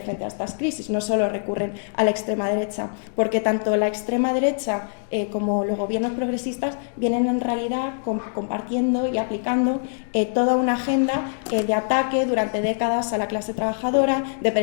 frente a estas crisis. No solo recurren a la extrema derecha, porque tanto la extrema derecha como los gobiernos progresistas vienen en realidad compartiendo y aplicando toda una agenda de ataque durante décadas a la clase trabajadora, de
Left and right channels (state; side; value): silent; right; digital silence